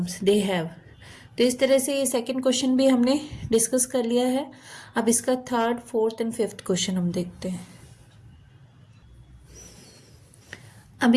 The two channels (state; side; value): identical; both; correlation 1.00